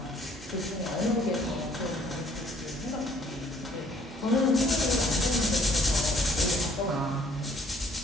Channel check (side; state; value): both; normal; correlation 0.61